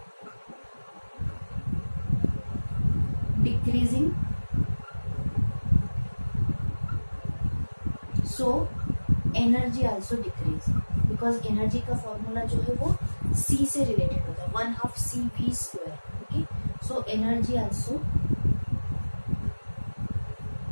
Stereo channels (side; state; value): both; inverted; correlation -1.00